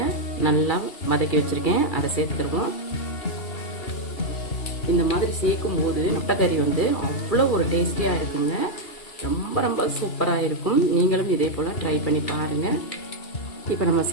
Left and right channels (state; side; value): late; right; 2.4 ms